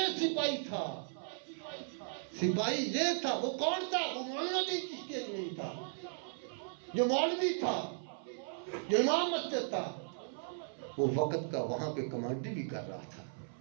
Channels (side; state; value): left; silent; 53 dB below the other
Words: سپاہی تھا، سپاہی یہ تھا۔ وہ کون تھا؟ وہ مولانا الدین چشتی اجمیری تھا، جو مولوی تھا، جو امام مسجد تھا، وہ وقت کا وہاں پہ کمانڈر بھی کر رہا تھا،